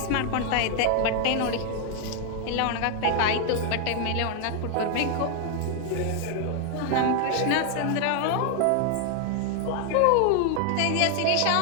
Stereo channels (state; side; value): different; both; correlation 0.00